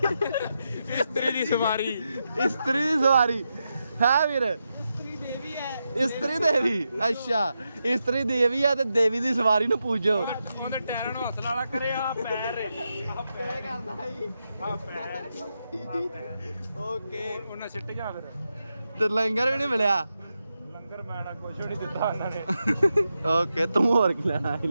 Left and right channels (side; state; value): both; inverted; correlation -0.87